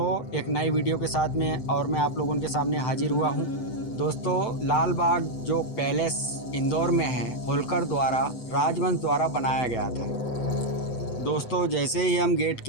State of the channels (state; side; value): late; right; 8.0 ms